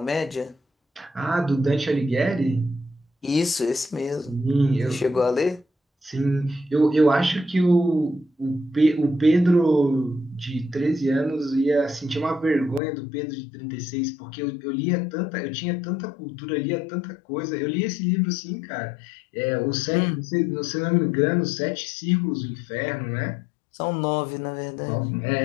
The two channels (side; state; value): right; drops out; at 12.8 s